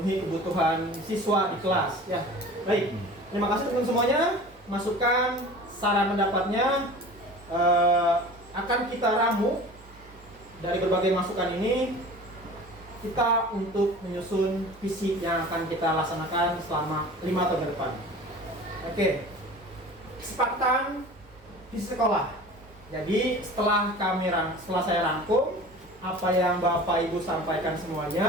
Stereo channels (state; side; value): normal; both; correlation 0.40